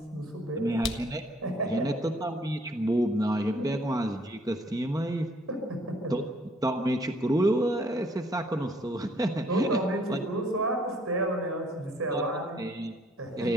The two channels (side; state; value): both; normal; correlation 0.63